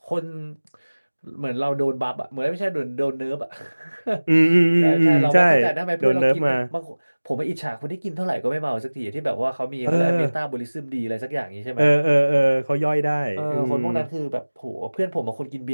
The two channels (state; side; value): inverted; both; correlation -1.00